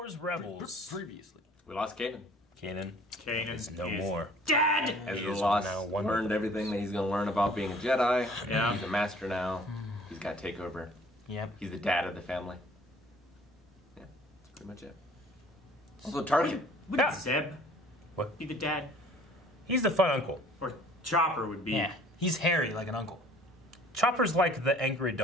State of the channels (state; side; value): normal; both; correlation 0.53